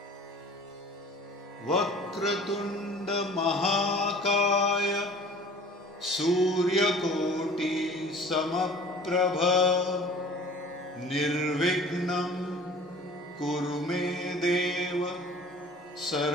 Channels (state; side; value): normal; both; correlation 0.46